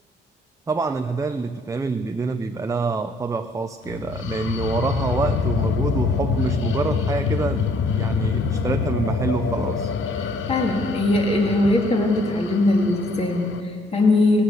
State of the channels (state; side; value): normal; both; correlation 0.65